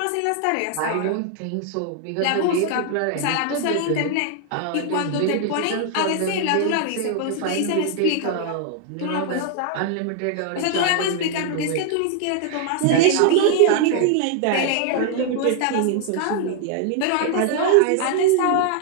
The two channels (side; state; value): both; different; correlation 0.00